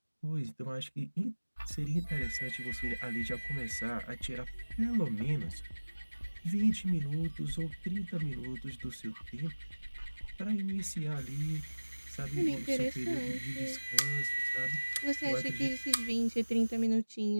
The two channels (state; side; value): inverted; both; correlation -1.00